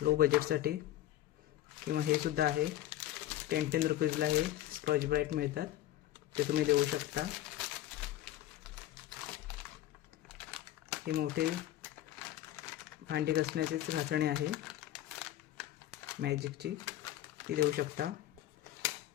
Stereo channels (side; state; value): right; quieter; 13.7 dB